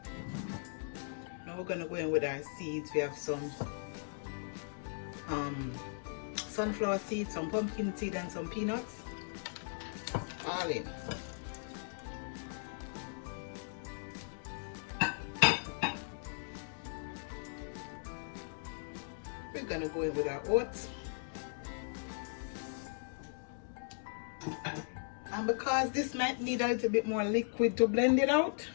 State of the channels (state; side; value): silent; right; digital silence